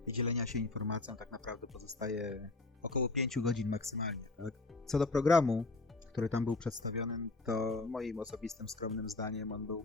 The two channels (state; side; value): quieter; right; 3.3 dB